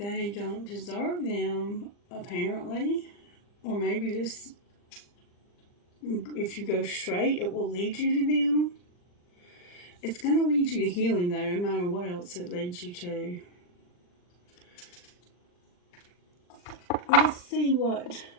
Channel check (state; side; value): late; right; 40 ms